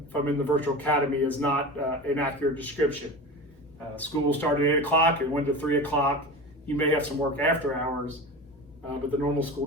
if I'm in the Virtual Academy is not an accurate description. School will start at 8 o'clock and 1 to 3 o'clock. You may have some work after hours, but the normal school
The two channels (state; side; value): normal; both; correlation 0.30